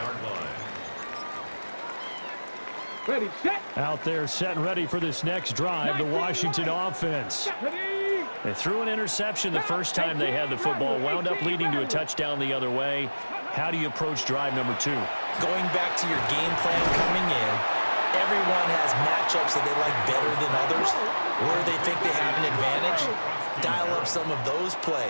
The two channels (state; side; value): inverted; both; correlation -1.00